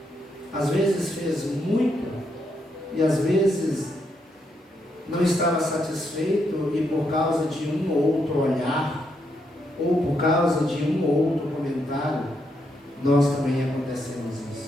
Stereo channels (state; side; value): normal; both; correlation 0.79